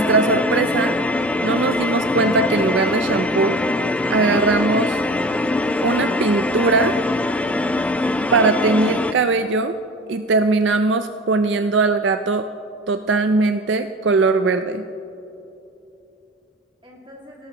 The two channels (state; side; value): normal; both; correlation 0.36